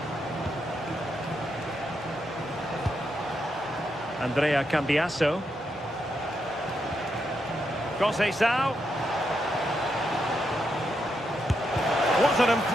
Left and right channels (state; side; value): normal; both; correlation 0.82